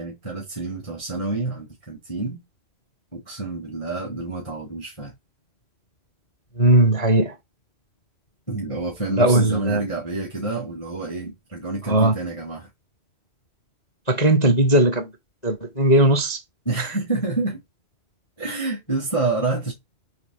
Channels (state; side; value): late; right; 1.9 ms